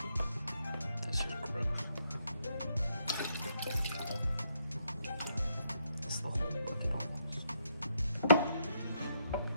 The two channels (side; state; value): both; inverted; correlation -0.75